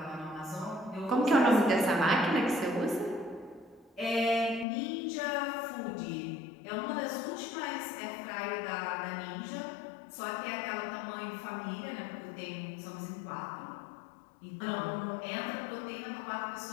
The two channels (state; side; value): drops out; right; at 4.7 s